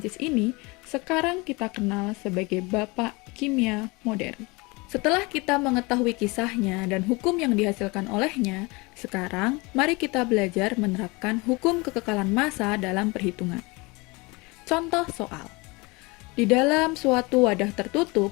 ini, sekarang kita kenal sebagai Bapak Kimia Modern. Setelah kita mengetahui kisahnya dan hukum yang dihasilkan olehnya, sekarang mari kita belajar menerapkan hukum kekekalan massa dalam perhitungan. Contoh soal. Di dalam suatu wadah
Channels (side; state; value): right; quieter; 25.7 dB